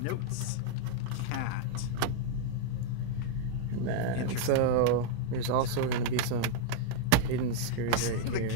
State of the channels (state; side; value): different; both; correlation 0.00